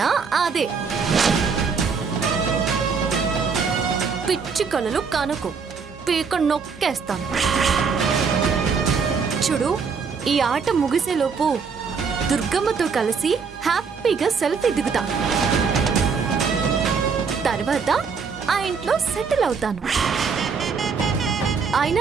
అదే. పిచ్చి కలలు కనుకు పీక నొక్కేస్తాను. చూడు, ఈ ఆట ముగిసేలోపు దుర్గమ్మతో కలిసి హ్యాపీగా సెల్ఫీ దిగుతా. తర్వాత ఆ ఇంట్లో సెటిల్ అవుతాను.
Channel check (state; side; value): quieter; left; 5.6 dB